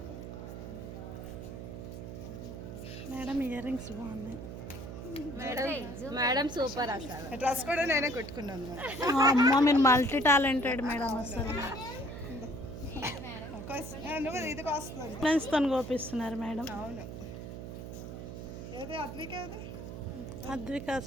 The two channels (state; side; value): noise; right; hum, 9 dB below the sound